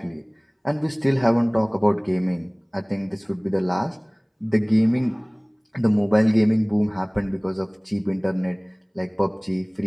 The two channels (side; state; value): both; identical; correlation 1.00